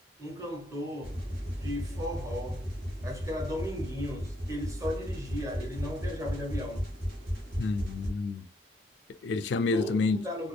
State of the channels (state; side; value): normal; both; correlation 0.72